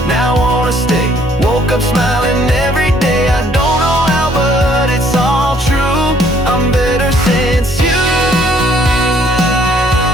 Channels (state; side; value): normal; both; correlation 0.63